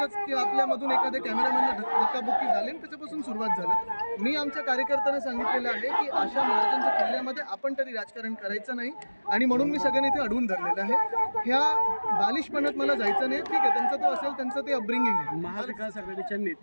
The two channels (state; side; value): inverted; both; correlation -1.00